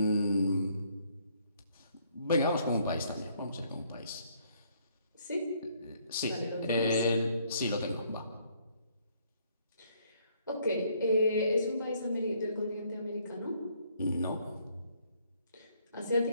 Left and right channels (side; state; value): both; inverted; correlation -0.67